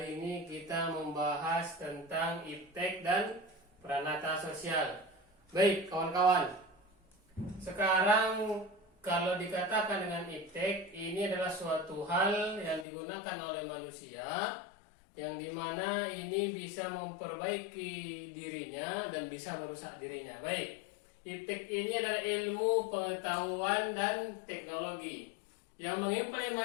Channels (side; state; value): right; drops out; at 12.9 s